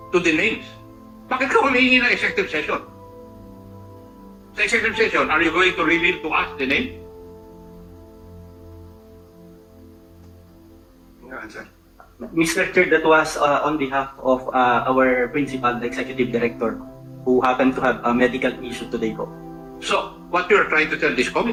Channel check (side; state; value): both; identical; correlation 1.00